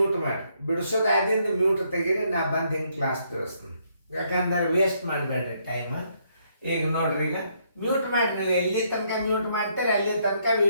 ಮಾಡ್ರಿ, ಬಿಡಿಸೋದು ಆದಿಂದ ಮ್ಯೂಟ್ ತೆಗೀರಿ. ನಾ ಬಂದು ಹಿಂಗೆ ಕ್ಲಾಸ್ ತಿಳಿಸ್ತೀನಿ. ಯಾಕಂದ್ರೆ ವೇಸ್ಟ್ ಮಾಡಬೇಡ್ರಿ ಟೈಮ್. ಈಗ ನೋಡ್ರಿ, ಈಗ ಮ್ಯೂಟ್ ಮಾಡಿ, ನೀವು ಎಲ್ಲಿ ತನಕ ಮ್ಯೂಟ್ ಮಾಡ್ತಾರೆ ಅಲ್ಲಿ ತನಕ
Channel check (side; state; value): both; inverted; correlation -0.72